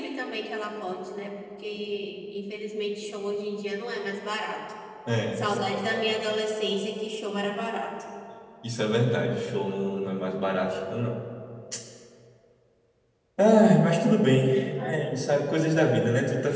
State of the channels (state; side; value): identical; both; correlation 1.00